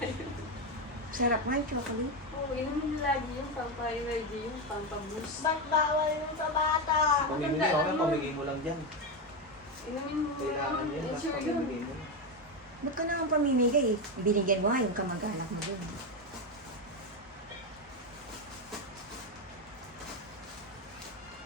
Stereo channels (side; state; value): both; normal; correlation 0.11